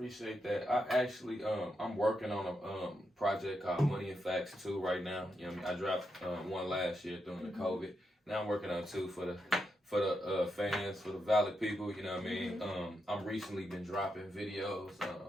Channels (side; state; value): both; normal; correlation 0.84